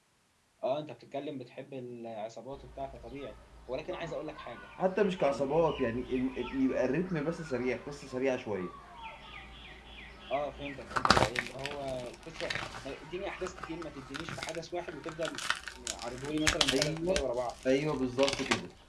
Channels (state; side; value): identical; both; correlation 1.00